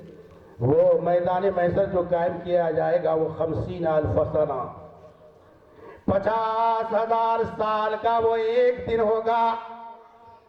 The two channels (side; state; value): both; identical; correlation 1.00